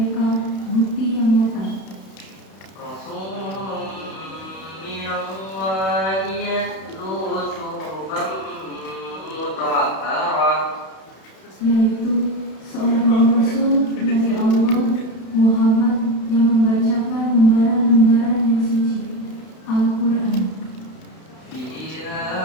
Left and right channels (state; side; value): late; right; 31 ms